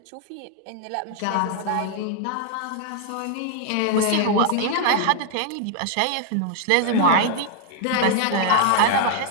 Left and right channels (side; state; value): both; different; correlation 0.00